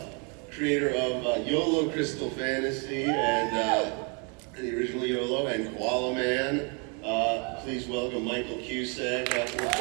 creator of YOLO Crystal Fantasy and the original YOLO and Koala Man. Please welcome Michael Cusack.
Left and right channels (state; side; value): quieter; left; 34.6 dB